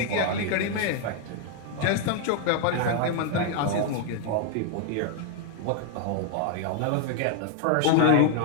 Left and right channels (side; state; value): both; different; correlation 0.00